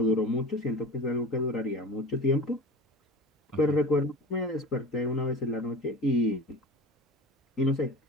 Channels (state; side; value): normal; both; correlation 0.35